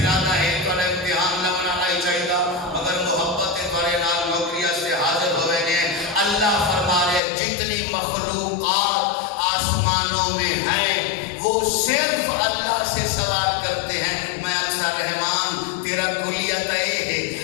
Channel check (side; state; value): right; drops out; at 7.2 s